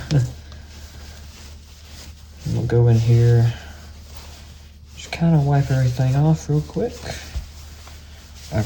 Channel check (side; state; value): both; identical; correlation 1.00